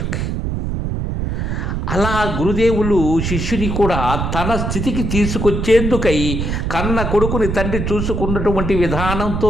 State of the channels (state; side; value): noise; right; rumble, 2 dB below the sound